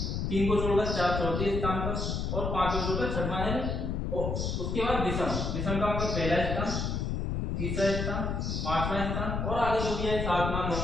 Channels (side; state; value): left; noise; rumble, 1 dB below the sound